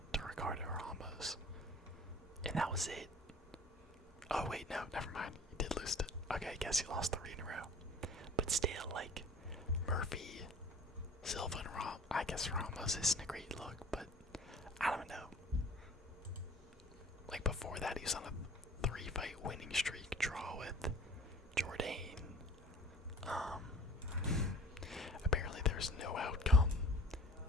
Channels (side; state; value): both; normal; correlation 0.46